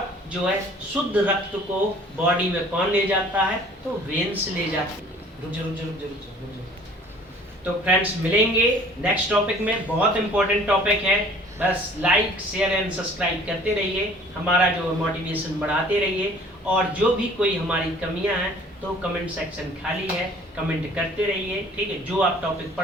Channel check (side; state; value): both; normal; correlation 0.52